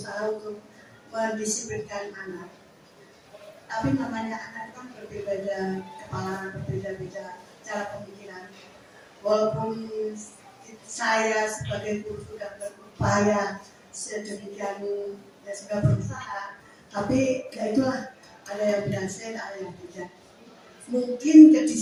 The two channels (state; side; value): identical; both; correlation 1.00